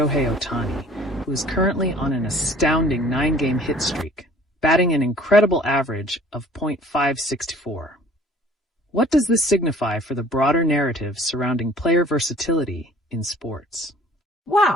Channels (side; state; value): both; normal; correlation 0.52